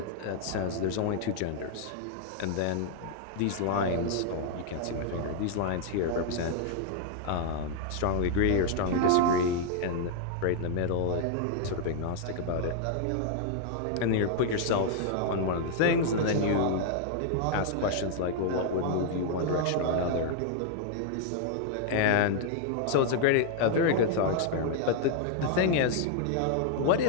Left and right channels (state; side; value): different; both; correlation 0.00